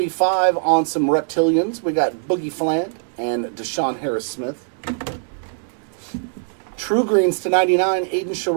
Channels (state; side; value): silent; left; digital silence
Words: on some reptilians, we got Boogie Fland and Deshaun Harris-Smith. True greens to 99, Aiden